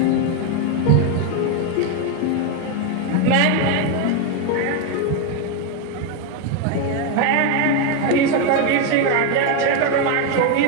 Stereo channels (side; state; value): both; different; correlation 0.02